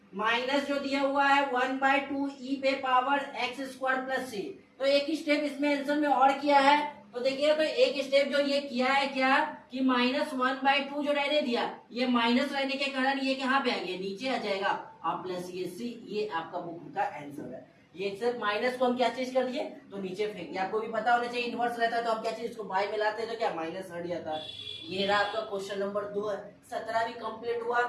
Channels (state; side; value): identical; both; correlation 1.00